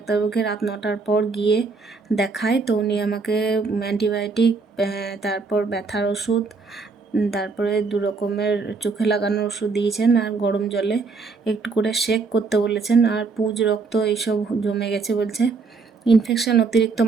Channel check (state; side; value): quieter; left; 4.4 dB